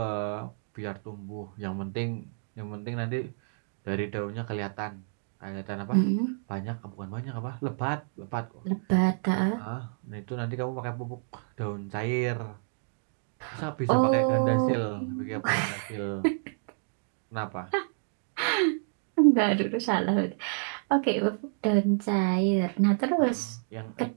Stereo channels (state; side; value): silent; left; digital silence